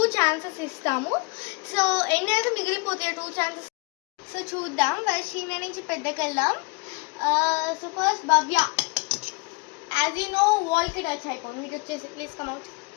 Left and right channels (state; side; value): quieter; right; 28.7 dB